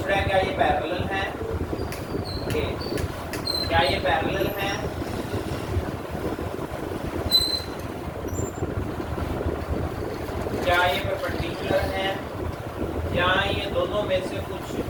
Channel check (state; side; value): identical; both; correlation 1.00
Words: रहा है क्या ये पैरेलल है? ओके, क्या ये पैरेलल है? क्या ये परपेंडिकुलर है या ये दोनों में से कुछ